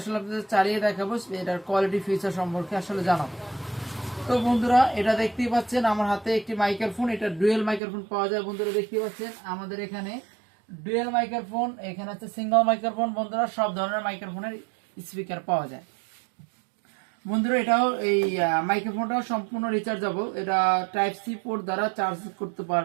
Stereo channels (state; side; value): drops out; left; at 7.8 s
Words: আপনাদের চালিয়ে দেখাবো, এটার কোয়ালিটি ফিচার সম্পর্কে আসলে জানাবো। তো বন্ধুরা এটা দেখতেই পাচ্ছেন আমার হাতে একটি মাইক্রোফোন, এটা ডুয়েল মাইক্রোফোন পাওয়া যায়। বন্ধুরা দেখতেই পাচ্ছেন আমাদের এখানে ডুয়েল মাইক্রোফোন, এখানে আছে সিঙ্গেল মাইক্রোফোন। বন্ধুরা সব ধরনের মাইক্রোফোনের স্পিকার পাওয়া যায়। বন্ধুরা এটাও এই মাইক্রোফোনটাও সম্পূর্ণ রিচার্জেবল, এটা টাইপ সি পোর্ট দ্বারা চার্জ করতে